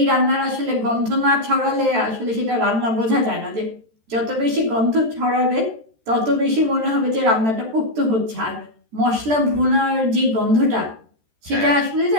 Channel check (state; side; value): late; left; 13 ms